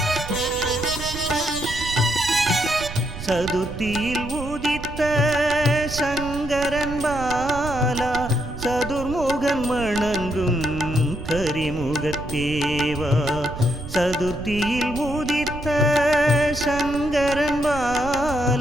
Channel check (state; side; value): noise; right; rumble, 10 dB below the sound